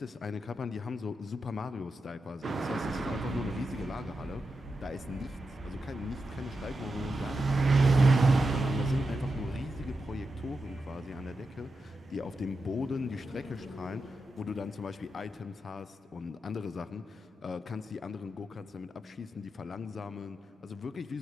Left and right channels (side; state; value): both; normal; correlation 0.87